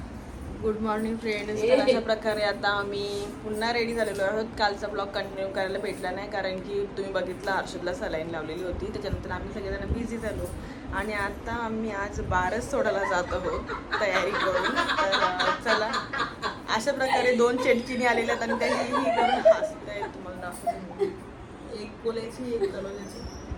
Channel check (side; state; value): both; identical; correlation 1.00